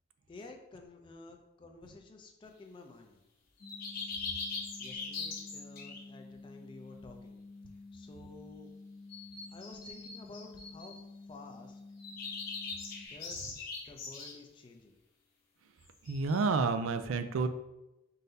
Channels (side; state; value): both; normal; correlation 0.23